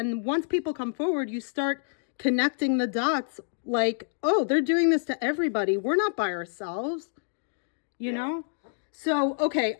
once people come forward, you start connecting the dots. Like, oh, they're doing this to everybody. We're not by ourselves, you know? So, okay,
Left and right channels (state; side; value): silent; right; digital silence